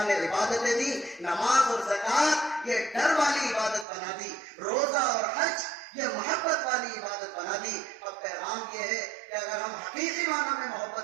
نے عبادتیں دی، نماز اور زکوٰۃ یہ ڈر والی عبادت بنا دی، روزہ اور حج یہ محبت والی عبادت بنا دی. اب پیغام یہ ہے کہ اگر ہم حقیقی معنی میں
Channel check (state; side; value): drops out; left; at 3.9 s